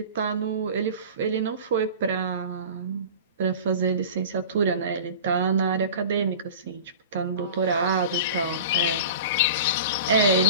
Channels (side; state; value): both; inverted; correlation -0.37